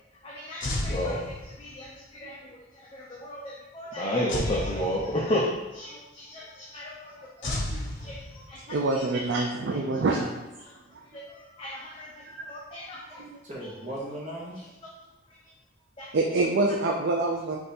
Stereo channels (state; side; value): normal; both; correlation 0.23